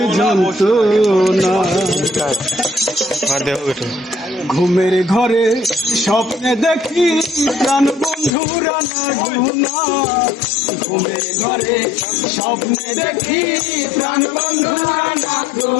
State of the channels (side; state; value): right; drops out; at 8.3 s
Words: যন্ত্রণা। ঘুমের ঘরে স্বপ্নে দেখি প্রাণ বন্ধুরা না গুনা, ঘুমের ঘরে স্বপ্নে দেখি প্রাণ বন্ধুরা না